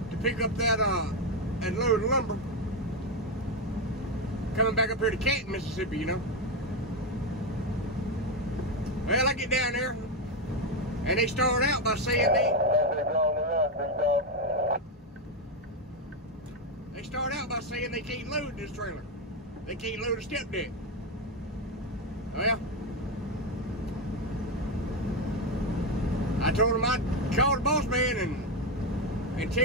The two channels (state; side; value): normal; both; correlation 0.08